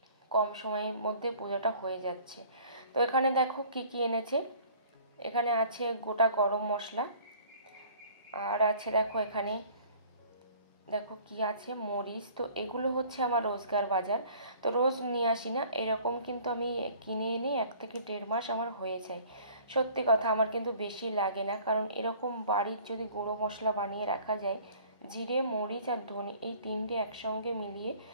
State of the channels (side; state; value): both; inverted; correlation -0.51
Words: কম সময়ের মধ্যে পূজাটা হয়ে যাচ্ছে। তো এখানে দেখো কি কি এনেছে, এখানে আছে গোটা গরম মশলা, আর আছে দেখো এখানে দেখো কি আছে, মরিচ। তো এগুলো হচ্ছে আমার রোজগার বাজার, তো রোজ নিয়ে আসি না, এরকম কিন্তু আমি কিনে এনে 1 থেকে 1.5 মাস আমার হয়ে যায়। সত্যি কথা, আমার কিন্তু বেশি লাগে না, কারণ এরকম বাড়ির যদি গুঁড়ো মশলা বানিয়ে রাখা যায়, জিরে মরিচ আর ধনে এই 3টে একসঙ্গে মিলিয়ে,